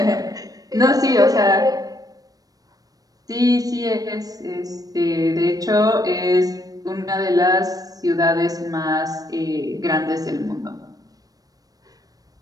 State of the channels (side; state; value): left; late; 0.18 ms